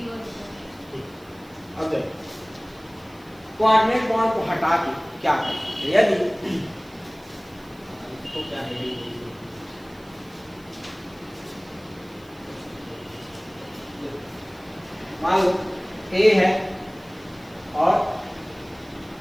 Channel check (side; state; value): right; noise; hiss, 27 dB below the sound